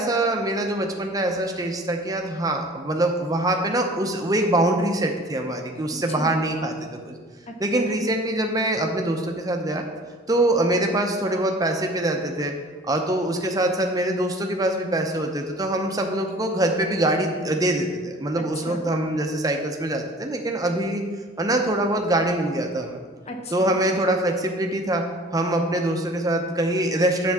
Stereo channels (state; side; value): normal; both; correlation 0.47